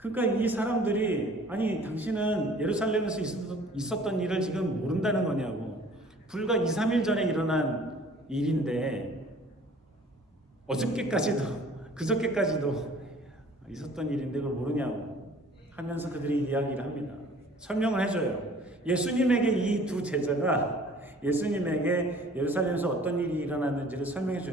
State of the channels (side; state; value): both; normal; correlation 0.51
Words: 이 사람들이 아니 당신은 예루살렘에서 있었던 일을 지금 모른다는 거냐고, 불과 2, 3일 전에 일어난 일인데 어저께까지도 그저께까지도 있었던 일인데 그걸 모르냐고 하면서 그들이 이야기를 합니다. 설명을 해줘요. 예수님에게 이 두 제자가 예수님에게 예루살렘에서 어떤 일이 일어났는지를 설명해